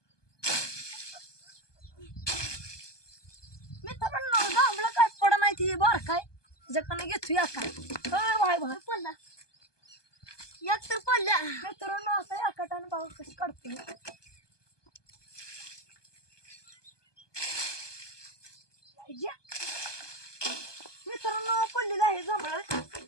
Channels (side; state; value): right; late; 1.2 ms